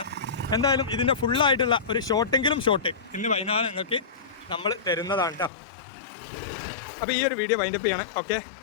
എന്തായാലും ഇതിൻ്റെ ഫുള്ളായിട്ടുള്ള ഒരു ഷോട്ട് ഇന്ന് വൈകുന്നേരം നിങ്ങൾക്ക് നമ്മൾ തരുന്നതാണ് കേട്ടോ. അപ്പോൾ ഈ ഒരു വീഡിയോ വൈൻഡപ്പ് ചെയ്യാണ്. Okay,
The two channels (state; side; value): drops out; right; at 5.5 s